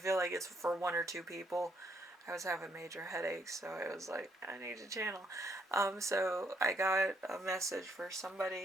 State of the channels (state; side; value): normal; both; correlation 0.72